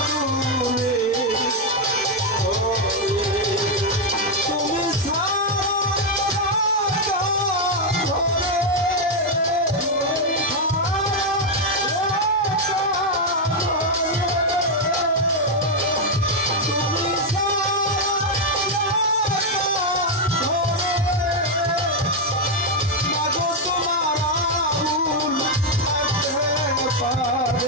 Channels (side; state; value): both; normal; correlation 0.02